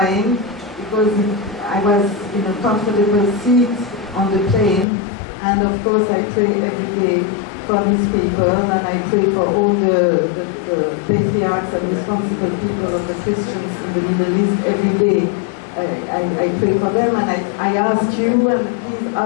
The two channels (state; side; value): drops out; right; at 4.9 s